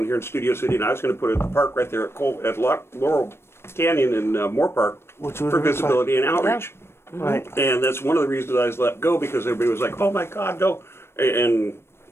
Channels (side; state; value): right; late; 0.12 ms